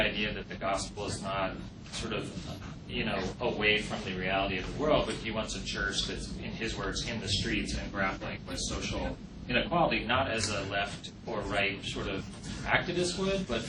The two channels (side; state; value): both; identical; correlation 1.00